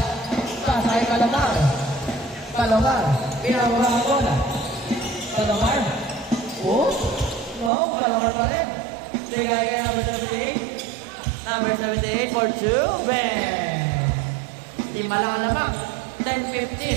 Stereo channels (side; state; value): left; drops out; at 7.7 s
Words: Pasa kay Palomar. Palomar. Pinababa ang bola. Palomar. Oh. No. Palomar pa rin. Bigay kay number 78. Number 78 for 2. Bang. Lima lang naman.